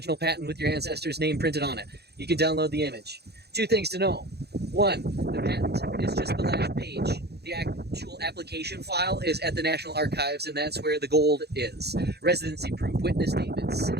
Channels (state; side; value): late; left; 0.48 ms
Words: patent with your ancestor's name printed on it. You can download the image. 2 things to know. 1, the patent is just the last page. The actual application file is at the National Archives, and that's where the gold is. Residency proof, witness statements,